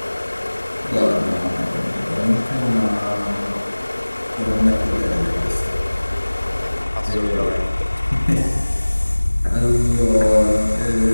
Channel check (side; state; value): both; inverted; correlation -1.00